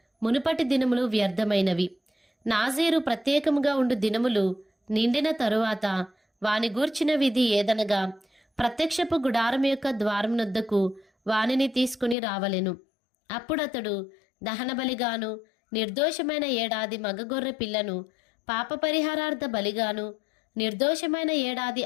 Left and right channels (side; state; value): right; drops out; at 12.2 s